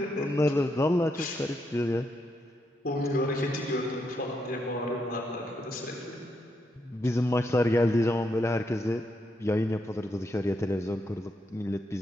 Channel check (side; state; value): both; normal; correlation 0.80